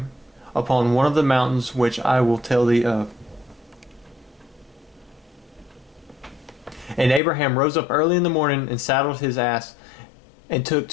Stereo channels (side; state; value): right; drops out; at 7.2 s